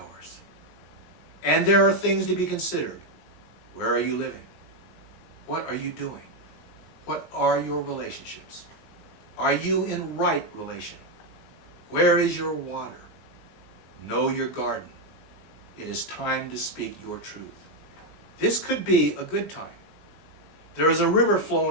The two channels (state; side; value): late; right; 19 ms